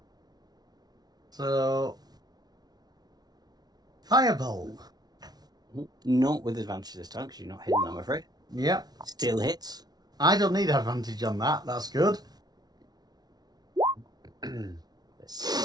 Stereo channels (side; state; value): left; late; 0.19 ms